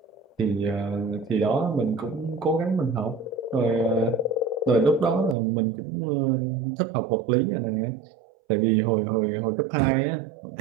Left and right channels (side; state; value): left; drops out; at 5.4 s